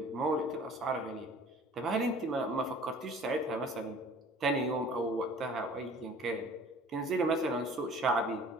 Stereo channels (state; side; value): normal; both; correlation 0.48